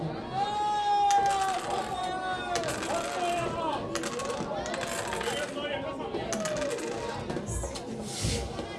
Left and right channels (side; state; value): both; identical; correlation 1.00